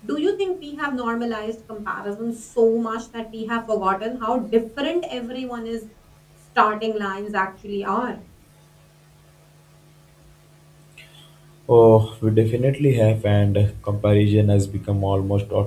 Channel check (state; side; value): identical; both; correlation 1.00